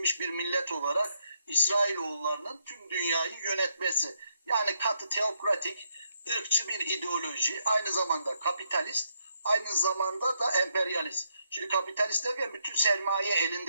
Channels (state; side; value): inverted; both; correlation -0.77